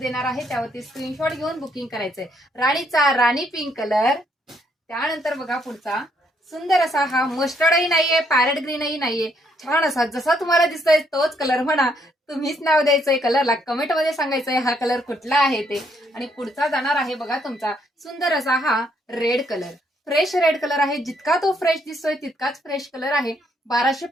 आहे, त्यावरती स्क्रीनशॉट घेऊन बुकिंग करायचंय. राणीचा राणी पिंक कलर. त्यानंतर बघा पुढचा सुंदर असा हा मस्टर्डही नाहीये पॅरेट ग्रीनही नाहीये, छान असा जसा तुम्हाला दिसतोय तोच कलर म्हणा. तुम्हीच नाव द्यायचंय कलरला, कमेंट मध्ये सांगायचंय हा कलर कुठला आहे ते. आणि पुढचा जाणार आहे बघा तुमचा सुंदर असा हा red colour. Fresh red colour आहे, जितका तो फ्रेश दिसतोय तितकाच फ्रेश कलर आहे.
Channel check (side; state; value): both; normal; correlation 0.71